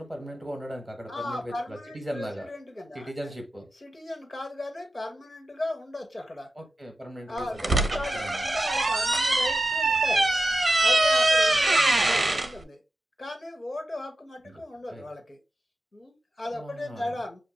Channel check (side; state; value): both; normal; correlation 0.92